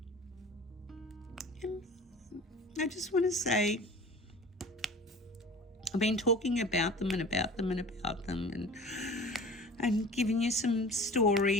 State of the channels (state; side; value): normal; both; correlation 0.41